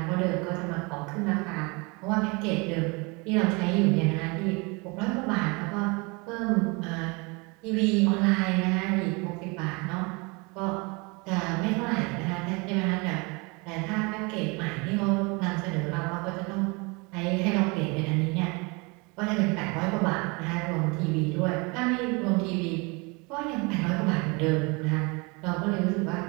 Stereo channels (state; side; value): quieter; left; 28.5 dB